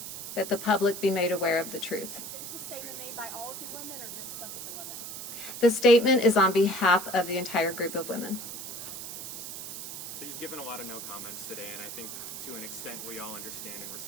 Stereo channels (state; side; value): noise; right; hiss, 8 dB below the sound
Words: that the public be made aware of the truth. Is this statement made by all of the women or just some of the women? The statement is on behalf of the entire group of women. So you've given a lot of no comments today, and I think to an extent we all understand and